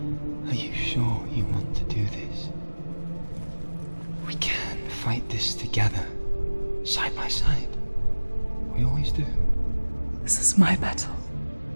are you sure you want to do this? We can fight this together, side by side. We always do. This is my battle.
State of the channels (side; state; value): both; inverted; correlation -1.00